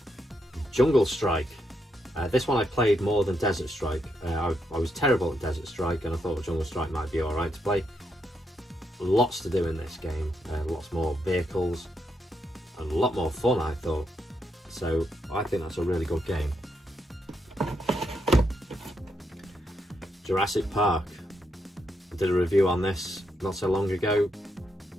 Jungle Strike. This one I played more than Desert Strike. I was terrible at Desert Strike and I thought Jungle Strike might be alright to play. Lots to do in this game, lots more vehicles and a lot more fun I thought. So I think that's a really good game. Jurassic Park. I did a review on this not so long ago.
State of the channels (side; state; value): both; normal; correlation 0.80